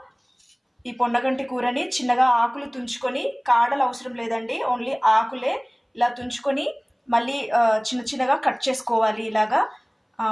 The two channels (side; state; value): both; identical; correlation 1.00